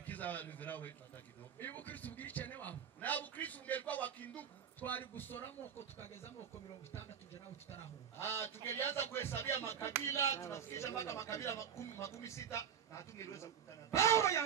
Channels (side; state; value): left; quieter; 8.3 dB